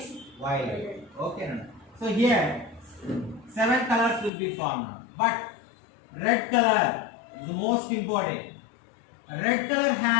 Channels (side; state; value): right; drops out; at 4.3 s